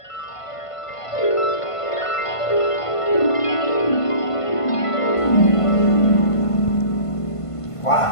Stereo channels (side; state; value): right; late; 1.5 ms